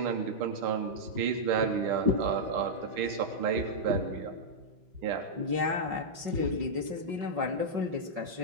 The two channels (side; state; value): left; late; 5.4 ms